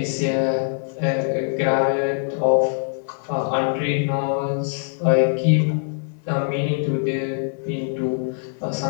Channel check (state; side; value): silent; right; digital silence